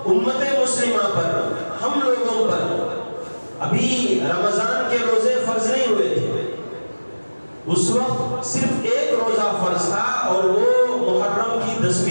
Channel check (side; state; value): both; inverted; correlation -1.00